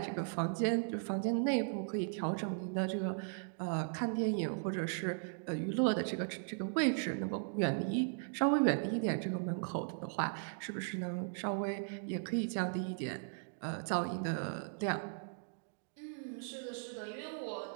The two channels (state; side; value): silent; left; digital silence